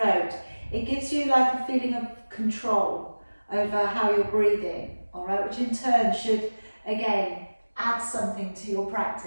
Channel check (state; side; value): inverted; both; correlation -1.00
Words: it gives you like a feeling of control over how you're breathing, all right? Which in turn should, again, add something to your